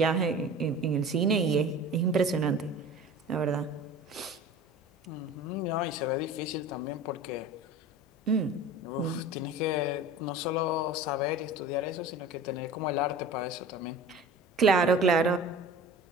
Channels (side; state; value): both; normal; correlation 0.39